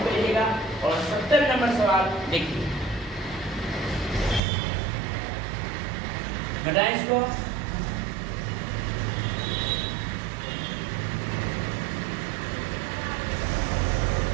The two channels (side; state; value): left; drops out; at 4.4 s